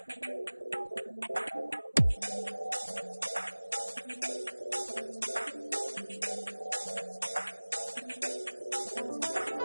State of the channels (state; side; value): inverted; both; correlation -1.00